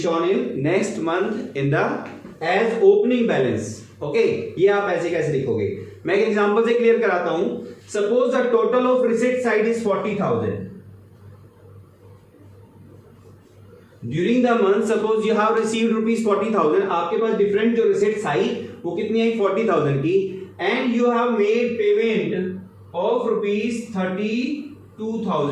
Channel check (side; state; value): both; identical; correlation 1.00